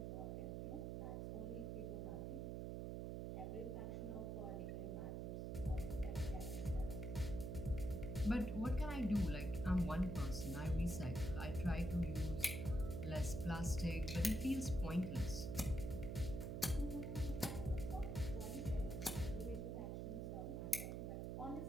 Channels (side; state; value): right; noise; hum, 3 dB below the sound